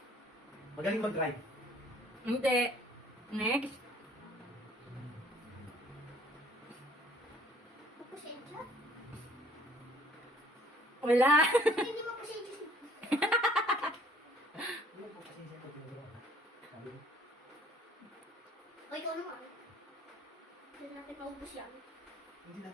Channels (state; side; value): normal; both; correlation 0.58